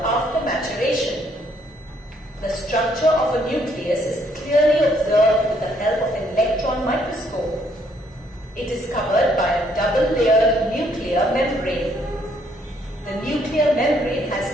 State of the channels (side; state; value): both; normal; correlation 0.68